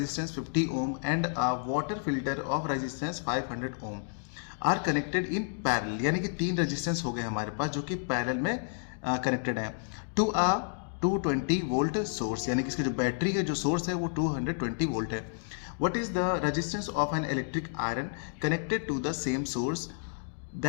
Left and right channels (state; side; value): silent; right; digital silence